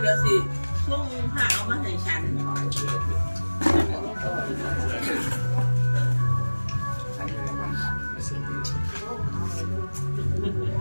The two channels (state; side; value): inverted; both; correlation -1.00